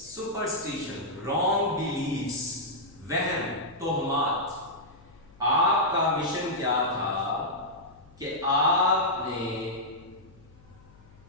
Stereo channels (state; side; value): noise; left; hum, 25 dB below the sound